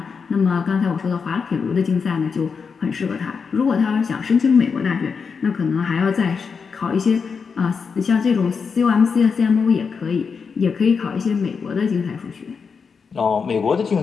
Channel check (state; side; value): quieter; right; 5.6 dB